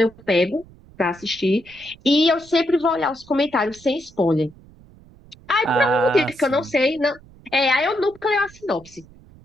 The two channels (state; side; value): noise; right; rumble, 24 dB below the sound